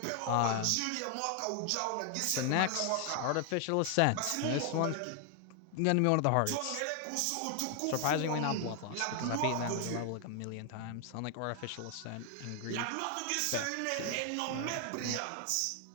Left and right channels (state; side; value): different; both; correlation 0.00